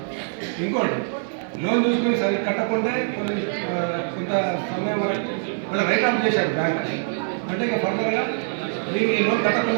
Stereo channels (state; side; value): silent; left; digital silence